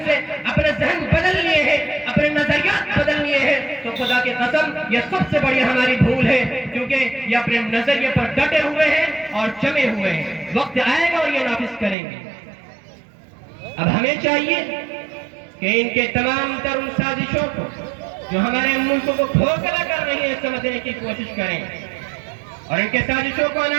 سے اپنے ذہن بدل لیے ہیں، اپنے نظریات بدل لیے ہیں، تو خدا کی قسم یہ سب سے بڑی ہماری بھول ہے، کیونکہ یہ اپنے نظریے پر ڈٹے ہوئے ہیں اور جمے ہوئے ہیں۔ وقت آئے گا اور یہ نافذ کریں گے۔ اب ہمیں چاہیے کہ ان کے تمام تر ان سازشوں کو جو ہمارے ملک کو کھوکھلا کر رہی ہیں سمجھنے کی کوشش کریں اور ان کے سازشوں کو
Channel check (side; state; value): left; drops out; at 12.0 s